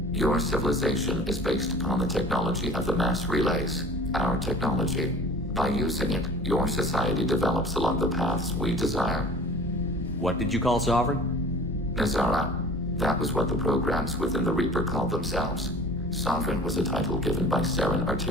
Your civilization is based upon the technology of the mass relays, our technology. By using it, your society develops along the paths we desire. What did you call Sovereign? Nazara. That was what the programs within the Reaper called themselves. Sovereign was a title given by Saren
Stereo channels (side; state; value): both; normal; correlation 0.43